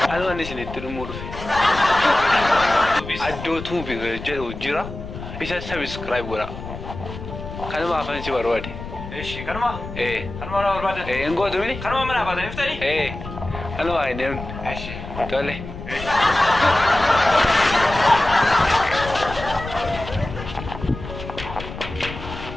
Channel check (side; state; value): left; noise; rumble, 10 dB below the sound